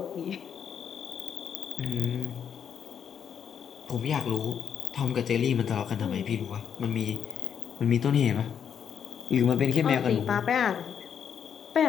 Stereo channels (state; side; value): quieter; right; 7.9 dB